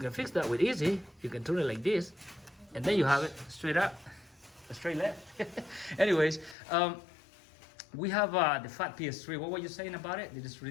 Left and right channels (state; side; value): drops out; right; at 6.6 s